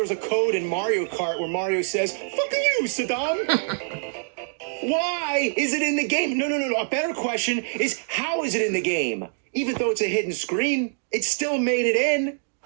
was a code in Mario Kart where Mario says, "Fuck you, Saddam." Why is it in the game? No. A better question is, how is it in the game? Even though it's a hidden screen, it still made it in.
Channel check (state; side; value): silent; left; digital silence